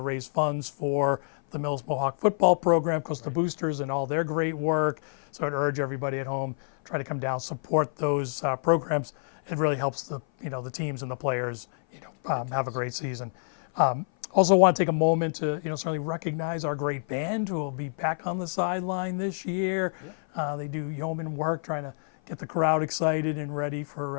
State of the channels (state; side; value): silent; right; 56 dB below the other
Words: raise funds for the Millis Mohawk football program, because the boosters and all their great work. So I'd urge everybody at home, try to come down, support those programs. It really helps the teams and the players have a great season. Also want to take a moment to certainly recognize our great band who will be back on the sideline this year. Yep. They do yeoman work trying to get the crowd excited and ready